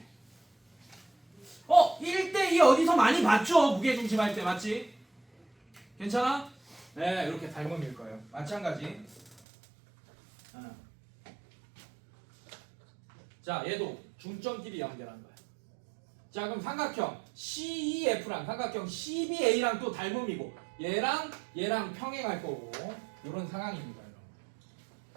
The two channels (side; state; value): left; drops out; at 9.4 s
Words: 1대2 어디서 많이 봤죠? 무게중심 할 때. 맞지? 괜찮아? 네, 이렇게 닮음일 거예요. 마찬가지. 자, 얘도 중점끼리 연결한 거야. 자, 그럼 삼각형 CEF랑 삼각형 CBA랑 또 닮음이고 얘랑 평행할 거고 이런 상황입니다. 여러분.